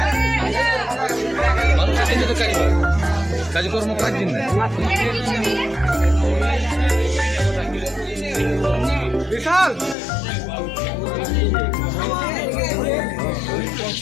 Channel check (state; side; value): drops out; right; at 10.0 s